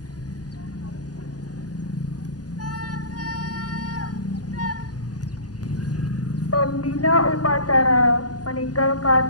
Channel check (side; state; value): right; late; 0.68 ms